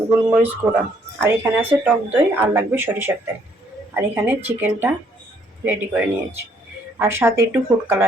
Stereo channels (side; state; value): both; normal; correlation 0.67